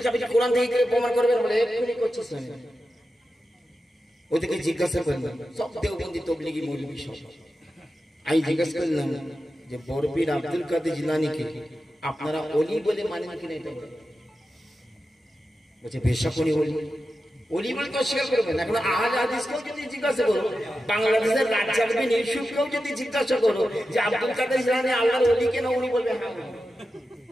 বুঝা কোরআন থেকে প্রমাণ করবেন বলে এক্ষুনি করছিস না। ওদেরকে জিজ্ঞাসা করলাম, সব দেওবন্দি তবলিগি মৌলবী সব। আমি জিজ্ঞাসা করলাম যে বরপীর আব্দুল কাদের জিলানীকে আপনারা ওলি বলে মানেন কিনা? এটা বলছে বেশক উনি ওলি। ওলি বলে তো অস্বীকার করবেন। এখন আহলে হাদিসকেও যদি জিজ্ঞাসা করো, বাংলাদেশের রাজ্জাকবিন ইউসুফকেও যদি জিজ্ঞাসা করো যে আব্দুল কাদের জিলানী আল্লাহর ওলি কেন, উনি বলবে হ্যাঁ।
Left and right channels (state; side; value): normal; both; correlation 0.91